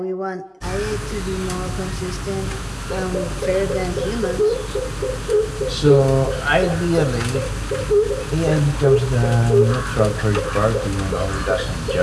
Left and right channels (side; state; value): both; identical; correlation 1.00